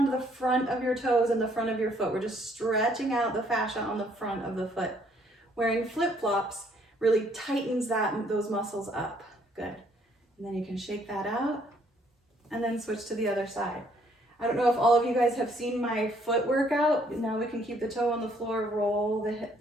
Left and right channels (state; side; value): normal; both; correlation 0.66